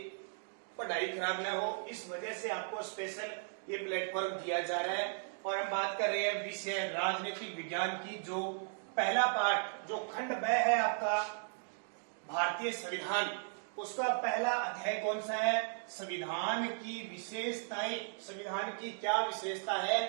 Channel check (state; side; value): silent; left; digital silence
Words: पढ़ाई खराब न हो, इस वजह से आपको स्पेशल ये प्लेटफॉर्म दिया जा रहा है। और हम बात कर रहे हैं विषय राजनीतिक विज्ञान की, जो पहला पाठ जो खंड ब है आपका भारतीय संविधान, उसका पहला अध्याय कौन सा है? संविधान की विशेषताएं। संविधान की क्या विशेषता है